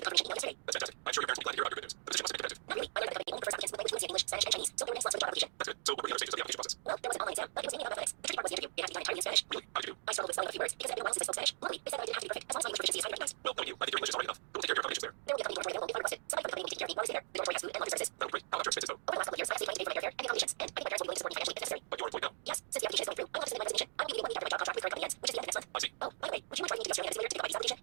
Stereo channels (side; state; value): left; silent; digital silence